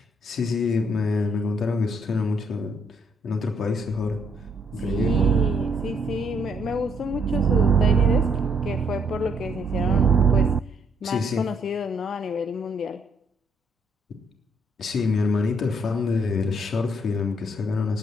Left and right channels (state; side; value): normal; both; correlation 0.69